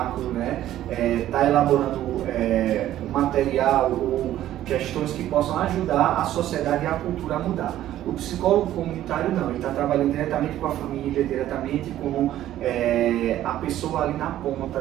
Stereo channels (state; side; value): quieter; left; 13.0 dB